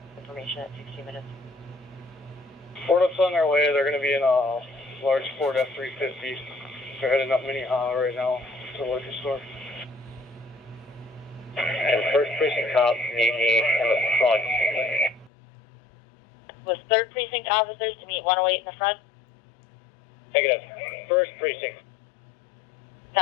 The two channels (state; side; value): drops out; right; at 15.3 s